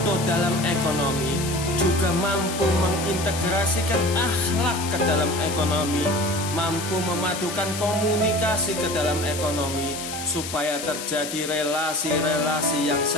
dalam ekonomi, juga mampu mengintegrasikan akhlak ke dalam ekonomi, mampu memadukan komunikasi ke dalam ekonomi, supaya terjadi relasi-relasi yang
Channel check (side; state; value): left; noise; hiss, 8 dB below the sound